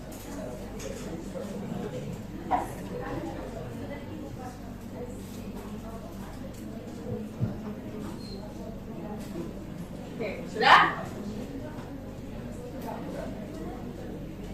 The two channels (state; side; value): identical; both; correlation 1.00